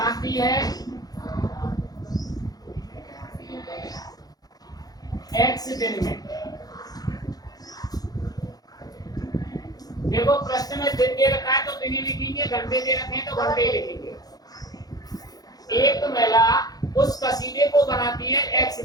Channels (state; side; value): late; right; 0.19 ms